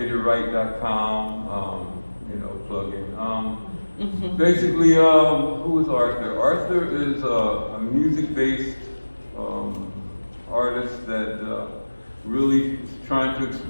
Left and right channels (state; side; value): inverted; both; correlation -1.00